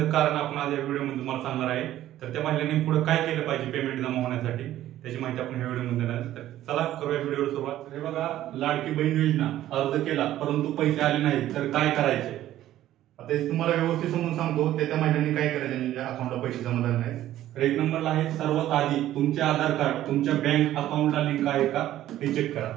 कारण आपण आज या व्हिडिओमध्ये तुम्हाला सांगणार आहे। तर त्या महिलांनी पुढे काय केलं पाहिजे पेमेंट जमा होण्यासाठी, त्याची माहिती आपण या व्हिडिओमध्ये देणार आहे। तर चला करूया व्हिडिओला सुरुवात। हे बघा, लाडकी बहीण योजना अर्ज केला परंतु पैसे आले नाहीत तर काय करायचे, आता हे तुम्हाला व्यवस्थित समजून सांगतो। त्या महिलांनी काय करायचे ज्यांच्या अकाउंटला पैसे जमा झाले नाहीत। तर एक नंबरला आहे, सर्वात आधी तुमचे आधार कार्ड तुमच्या बँक अकाउंटला लिंक आहे का हे चेक करा।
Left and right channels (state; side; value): quieter; left; 13.3 dB